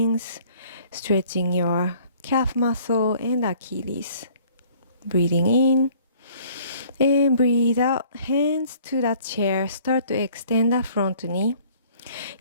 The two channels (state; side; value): inverted; both; correlation -0.56